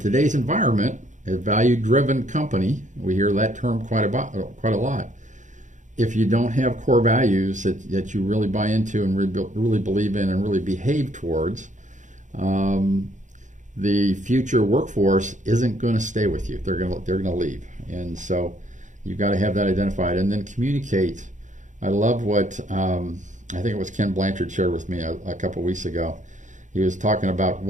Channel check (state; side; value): late; left; 0.36 ms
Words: environment, a value-driven company, we hear that term quite a lot. If you don't have core values that you really buy into and really believe in and really behave towards, the future workforce isn't going to stay with you. They're going to leave. And so you've got to have that identified and then communicate. I love what I think it was Ken Blanchard shared with me a couple of weeks ago. He was talking about